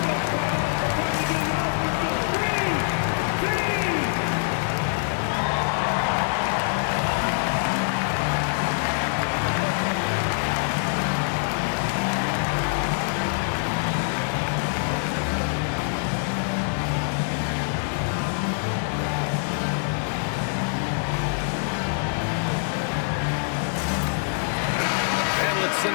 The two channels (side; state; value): right; silent; 62 dB below the other